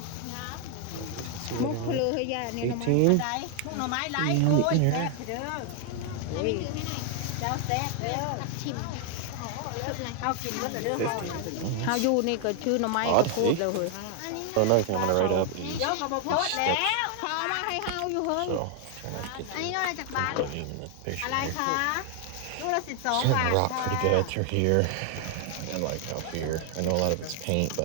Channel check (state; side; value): different; both; correlation 0.00